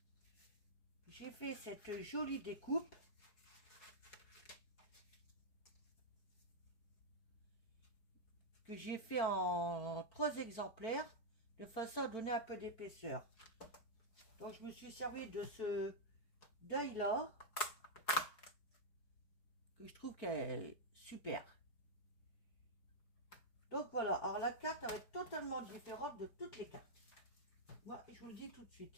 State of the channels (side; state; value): right; late; 4.8 ms